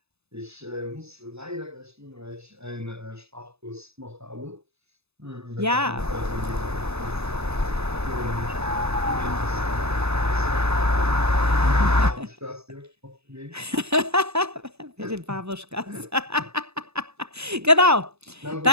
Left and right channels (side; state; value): left; late; 0.79 ms